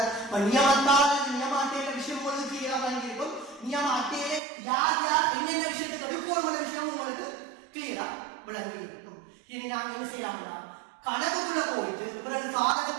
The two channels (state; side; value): drops out; left; at 4.4 s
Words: நியமத்தால் நியம அட்டையில விஷயம் உங்களுக்கு கிளியரா வாங்கியிருக்கும். நியம அட்டையில யார் யார் என்னென்ன விஷயத்துக்கு அடுக்கோணமான விஷயம் உங்களுக்கு கிளியரா விளங்கி இருக்கும். இனி நாங்க என்ன செய்யலாம்னா கணக்குக்குள்ள போயிட்டு பிறகு